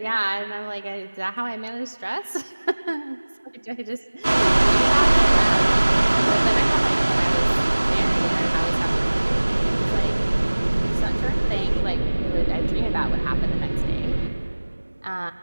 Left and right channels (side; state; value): both; inverted; correlation -1.00